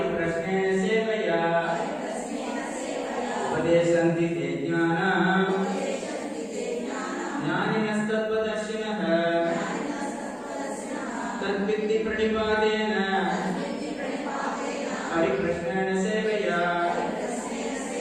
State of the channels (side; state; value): both; identical; correlation 1.00